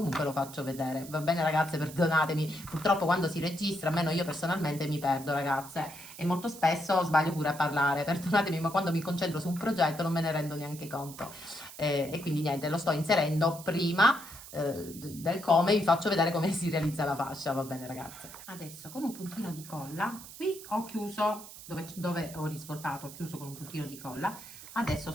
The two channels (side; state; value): right; noise; hiss, 15 dB below the sound